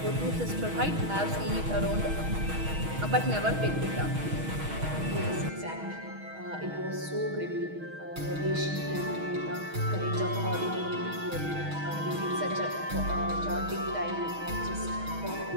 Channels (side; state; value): left; late; 6.3 ms